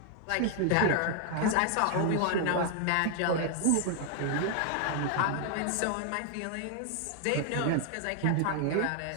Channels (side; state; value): both; different; correlation 0.00